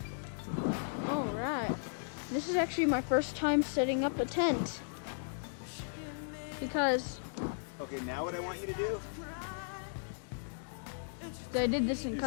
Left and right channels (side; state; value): right; silent; digital silence